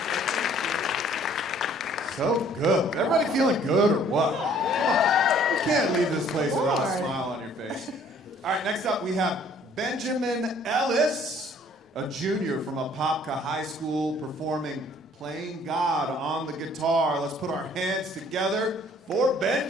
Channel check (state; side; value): normal; both; correlation 0.58